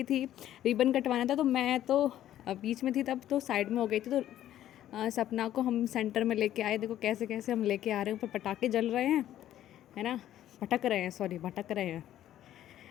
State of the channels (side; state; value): right; quieter; 12.2 dB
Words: थी, रिबन कटवाना था, तो मैं तो बीच में थी तब, तो साइड में हो गई थी। तो सपना को हम सेंटर में लेके आए, देखो कैसे कैसे हम लेके आ रहे हैं, ऊपर पटाखे जल रहे हैं, है ना, भटक रहे हैं, सॉरी भटक रहे हैं,